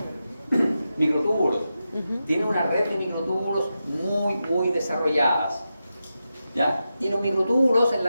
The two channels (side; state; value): both; inverted; correlation -0.90